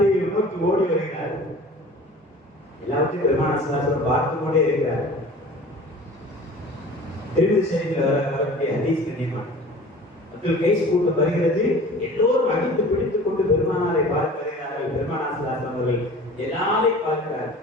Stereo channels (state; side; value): normal; both; correlation 0.42